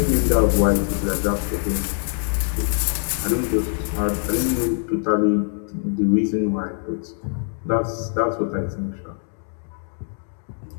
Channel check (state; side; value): silent; right; 63 dB below the other